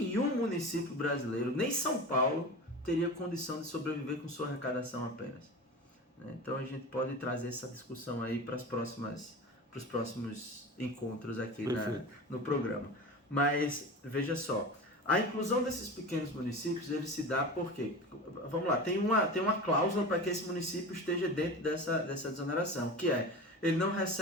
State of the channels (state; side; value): normal; both; correlation 0.31